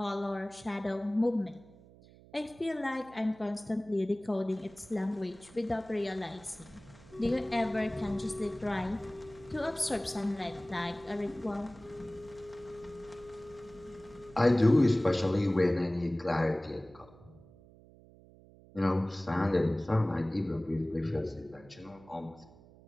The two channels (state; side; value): noise; right; hum, 23 dB below the sound